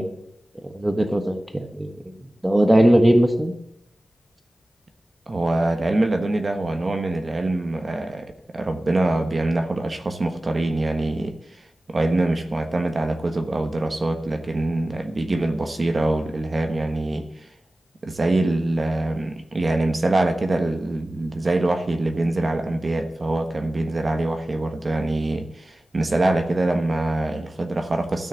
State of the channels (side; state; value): both; normal; correlation 0.96